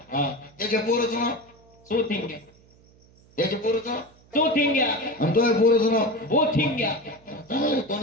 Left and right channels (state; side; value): noise; right; hum, 28 dB below the sound